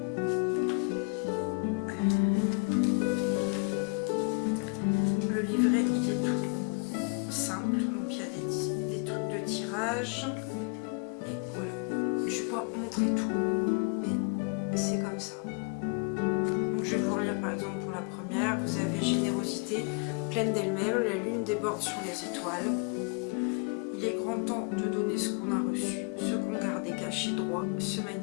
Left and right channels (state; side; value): quieter; right; 35.2 dB